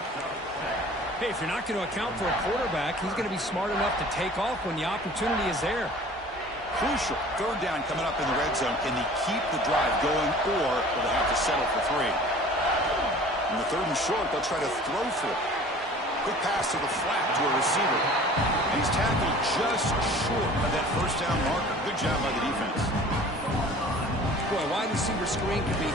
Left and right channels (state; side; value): normal; both; correlation 0.46